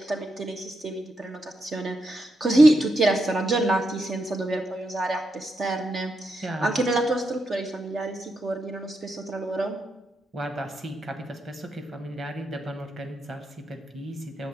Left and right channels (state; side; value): normal; both; correlation 0.84